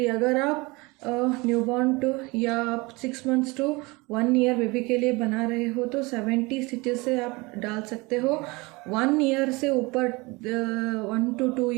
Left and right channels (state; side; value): quieter; left; 24.8 dB